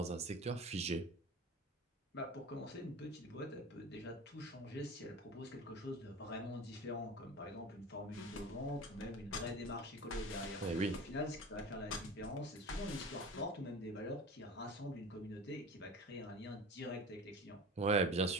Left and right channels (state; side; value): normal; both; correlation 0.34